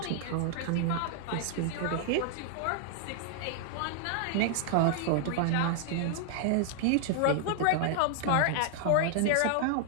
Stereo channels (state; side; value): different; both; correlation 0.00